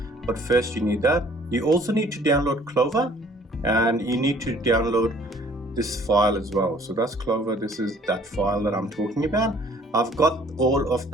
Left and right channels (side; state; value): both; normal; correlation 0.57